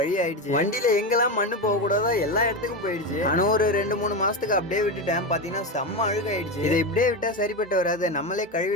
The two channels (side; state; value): both; normal; correlation 0.16